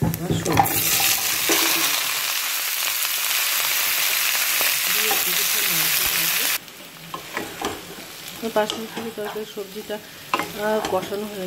বাসমতি তরকারি সবজিটা কষানো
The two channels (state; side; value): identical; both; correlation 1.00